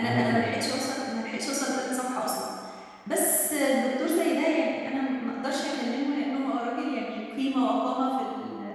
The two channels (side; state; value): both; identical; correlation 1.00